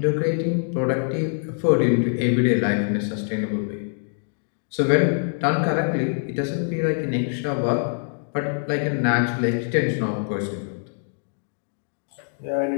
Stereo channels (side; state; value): right; silent; digital silence